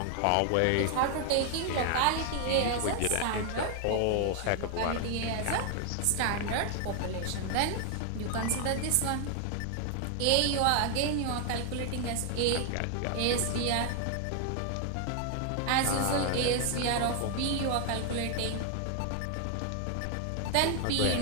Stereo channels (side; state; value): both; different; correlation 0.00